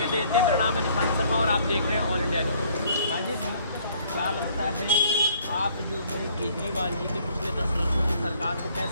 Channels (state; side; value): inverted; both; correlation -0.61